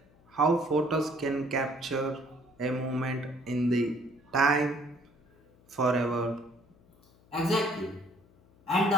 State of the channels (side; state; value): left; noise; hum, 29 dB below the sound